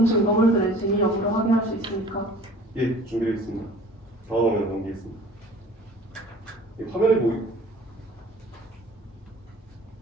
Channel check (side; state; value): both; normal; correlation 0.47